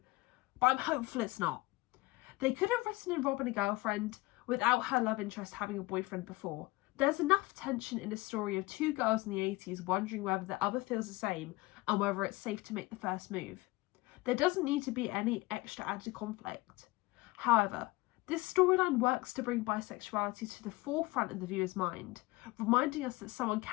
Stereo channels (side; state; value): right; quieter; 21.5 dB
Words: but I'm hopeful it's not. They could have written in Robin a girlfriend without her love interest having a boyfriend before. There's enough tension in a story of two girls in the 80s wondering whether the other feels the same and whether it's safe to make the first move. There doesn't need to be any extra added conflict. However, this storyline works to bring bisexuality to the forefront of the viewer's mind, reminding us that someone